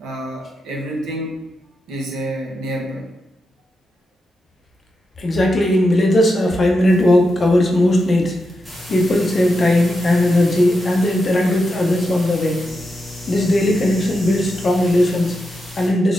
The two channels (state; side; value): normal; both; correlation 0.87